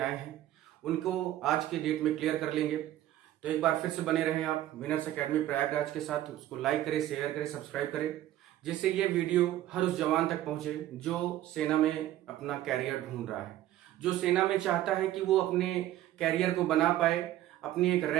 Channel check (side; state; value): left; quieter; 13.7 dB